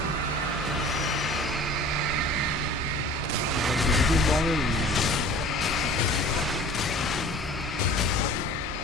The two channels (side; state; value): both; normal; correlation 0.44